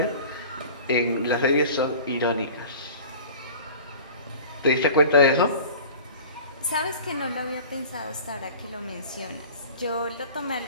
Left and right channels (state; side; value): inverted; both; correlation -0.41